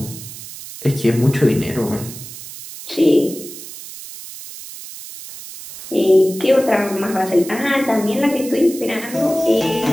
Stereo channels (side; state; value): right; noise; hiss, 13 dB below the sound